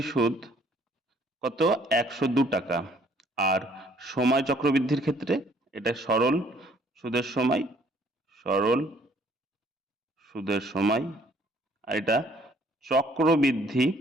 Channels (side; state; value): both; normal; correlation 0.61